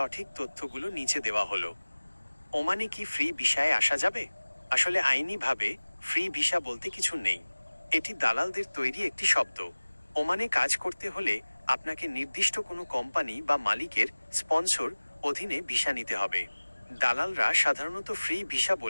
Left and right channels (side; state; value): both; inverted; correlation -1.00